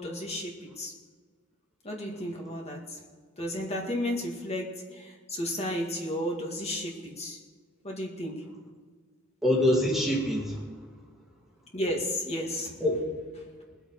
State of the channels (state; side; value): normal; both; correlation 0.55